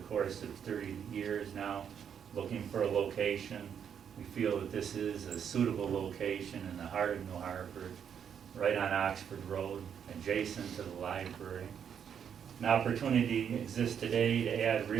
course of 30 years now, looking for a location. We feel that this is a suitable location in the heart of New Hartford, right on Oxford Road, adjacent to the library. An opportunity exists today to add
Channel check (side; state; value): left; quieter; 8.0 dB